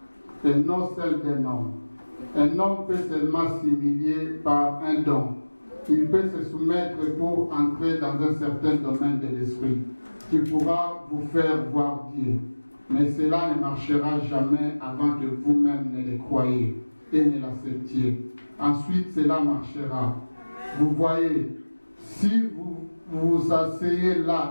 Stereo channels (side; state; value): both; inverted; correlation -1.00